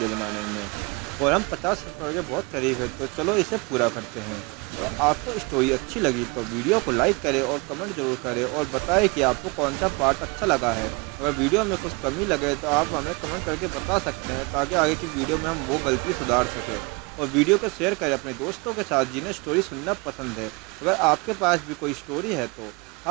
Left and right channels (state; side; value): quieter; left; 28.3 dB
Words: बनाने में, और हम 50 सब्सक्राइबर के बहुत करीब है। तो चलो इसे पूरा करते हैं। और आपको स्टोरी अच्छी लगी तो वीडियो को लाइक करें और कमेंट जरूर करें और बताएं कि आपको कौन सा पार्ट अच्छा लगा है। अगर वीडियो में कुछ कमी लगे तो आप हमें कमेंट करके बता सकते हैं, ताकि आगे की वीडियो में हम वो गलती सुधार सकें। और वीडियो को शेयर करें अपने दोस्तों के साथ जिन्हें स्टोरी सुनना पसंद है। अगर आपके पास भी कोई स्टोरी है तो